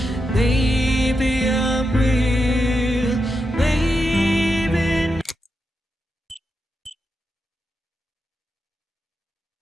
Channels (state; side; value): normal; both; correlation 0.86